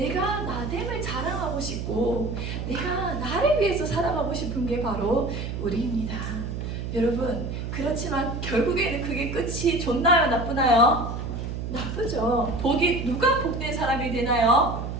나됨을 자랑하고 싶고 내가 나를 위해서 살아가고 싶은 게 바로 우리입니다. 여러분, 그렇지만 결국에는 그게 끝이 좋나요? 나쁘나요? 나쁘죠. 누가 복된 사람이 되나요?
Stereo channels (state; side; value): noise; right; hum, 5 dB below the sound